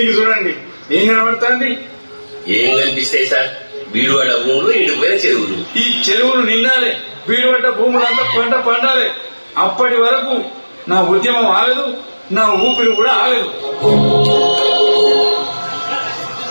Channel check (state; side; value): inverted; both; correlation -1.00